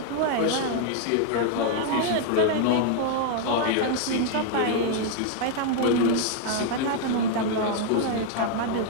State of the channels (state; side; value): different; both; correlation 0.00